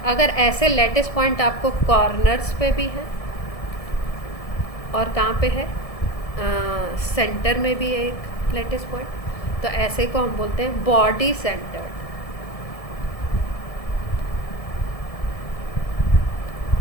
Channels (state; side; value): late; right; 1.7 ms